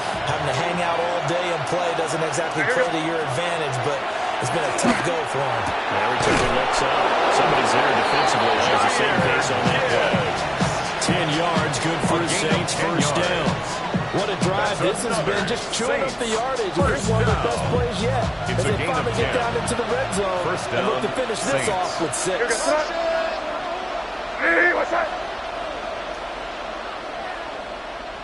having to hang out all day and play doesn't exactly play to your advantage, but it's been a tough go for him. Every time he looks up, somebody's there defensively. Shows the same pace on that play. 10 yards, good for the Saints, first down. What a drive this has been, just chewing up the yardage. And this is one of their best plays yet. As they finally get down into the red zone and look to finish this off with 6.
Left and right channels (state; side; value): identical; both; correlation 1.00